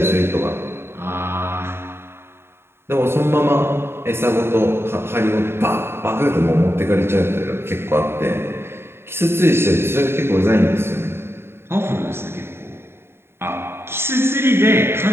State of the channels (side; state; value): left; late; 0.12 ms